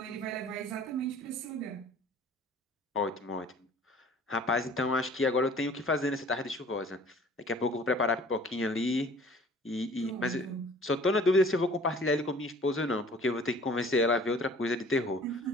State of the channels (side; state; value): both; normal; correlation 0.50